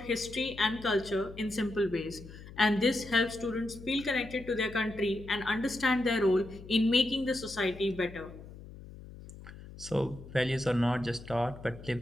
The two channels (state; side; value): noise; left; hum, 16 dB below the sound